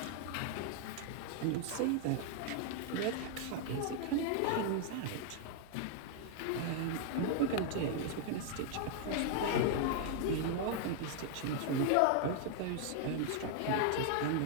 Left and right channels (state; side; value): different; both; correlation 0.00